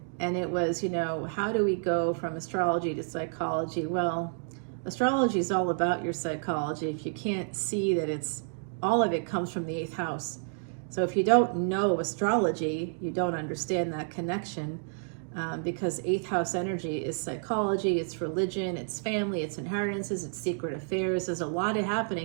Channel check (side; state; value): left; silent; digital silence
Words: And it was, you know, how do we go from astrology to psychology? Well, astrology is all about your psychology. If you can't see that it's, all of it comes from the 8th house. So if you don't know astrology, you don't understand that connection. because 8th house energy is psychology, it's religion, it's family, it's inheritances, it's secret affairs. There's a lot